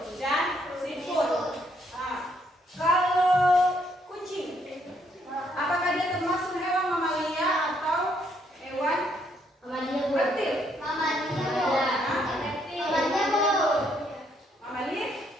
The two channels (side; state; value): both; normal; correlation 0.71